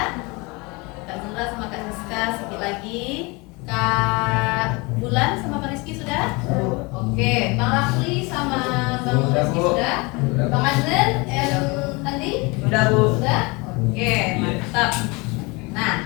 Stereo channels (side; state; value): right; quieter; 26.7 dB